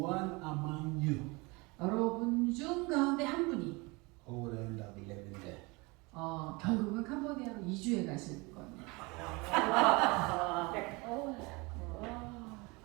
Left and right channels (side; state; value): left; quieter; 26.2 dB